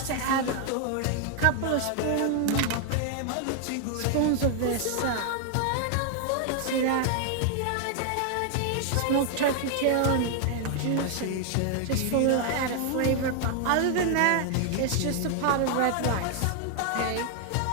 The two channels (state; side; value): different; both; correlation 0.00